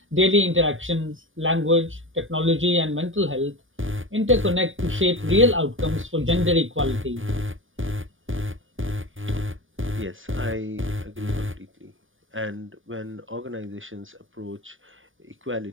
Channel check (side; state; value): left; late; 0.58 ms